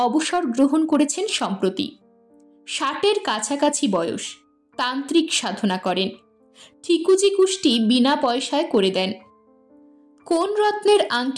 অবসর গ্রহণ করেছেন সম্প্রতি। 60-এর কাছাকাছি বয়স, তান্ত্রিক সাধনা করেন, ঠিকুজি কুষ্টি বিনা পয়সায় করে দেন। কোন রত্নের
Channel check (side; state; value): both; identical; correlation 1.00